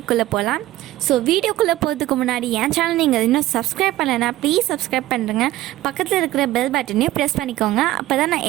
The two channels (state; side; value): quieter; left; 15.7 dB